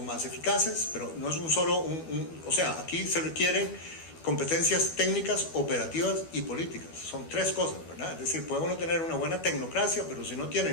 más eficaces, pero no es un solo, o sea, aquí se requieren competencias técnicas, operativas y políticas, son 3 cosas, ¿verdad? Es decir, puede uno tener una buena tecnocracia, pero si no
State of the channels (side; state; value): right; late; 12 ms